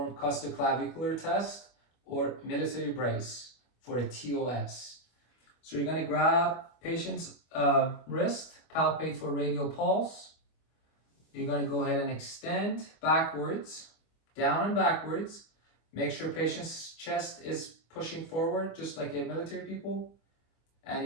costoclavicular test or military brace for a TOS. So you're going to grab patient's wrist, palpate for radial pulse. You're going to go ahead and extend backwards, down and backwards. Make sure patient's chest is pushing forward, just like a military people.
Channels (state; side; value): late; right; 25 ms